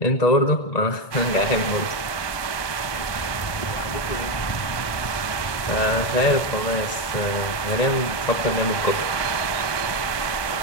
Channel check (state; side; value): late; right; 1.2 ms